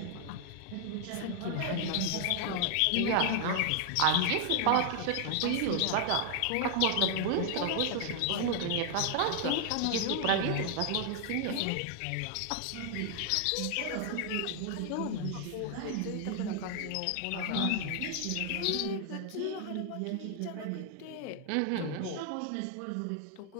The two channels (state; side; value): different; both; correlation 0.00